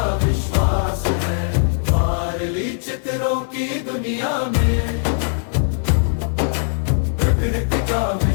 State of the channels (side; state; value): right; silent; digital silence